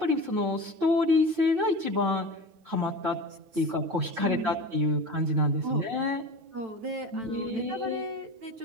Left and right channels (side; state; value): left; late; 9.0 ms